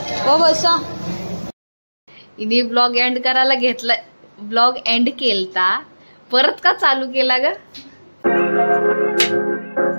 हो बसा. इनी ब्लॉग एंड करायला घेतला. ब्लॉग एंड केलता परत का चालू केला ग.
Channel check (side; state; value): both; inverted; correlation -1.00